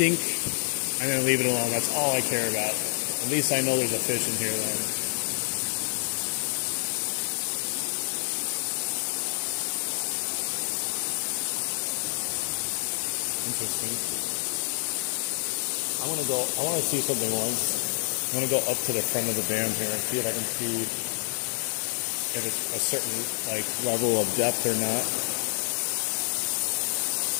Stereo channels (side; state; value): right; silent; digital silence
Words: and then leave it alone. That's all I care about. At least I know there's a fish in here then. Interesting. I want to see something once. I'm going to go up to the front of the dam here and see if I can see if it's a certain like level of depth or not.